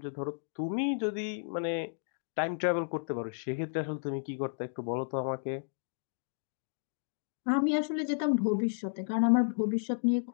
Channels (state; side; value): silent; right; digital silence